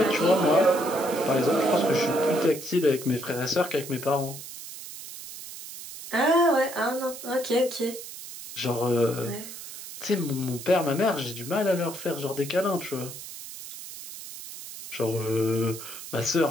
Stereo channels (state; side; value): noise; right; hiss, 12 dB below the sound